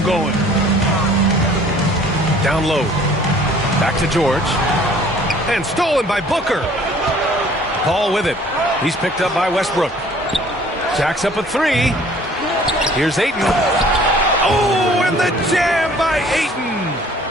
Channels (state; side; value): normal; both; correlation 0.54